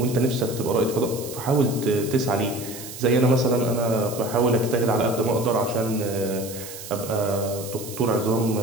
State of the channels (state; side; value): noise; right; hiss, 12 dB below the sound